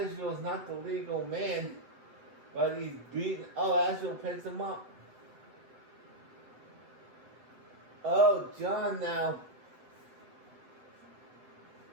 not the legal man, but he's beaten. Oh, Asheville picks him up. Oh, John now.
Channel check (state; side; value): late; left; 7.9 ms